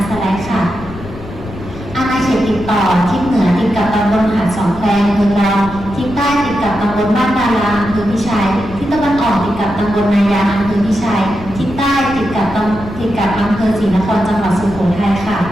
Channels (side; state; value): left; noise; rumble, 14 dB below the sound